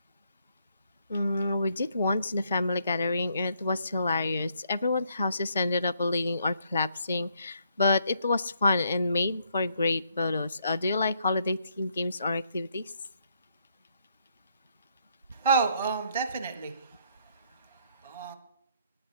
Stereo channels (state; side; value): inverted; both; correlation -0.72